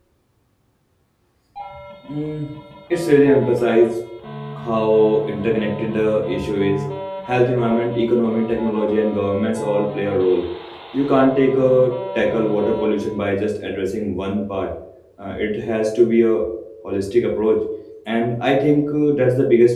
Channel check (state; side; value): identical; both; correlation 1.00